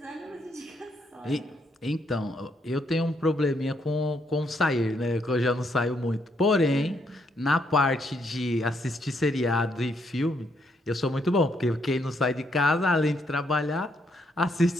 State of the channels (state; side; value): normal; both; correlation 0.74